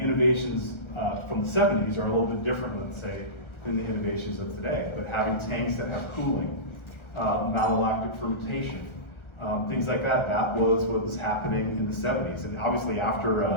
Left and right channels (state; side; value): late; right; 1.4 ms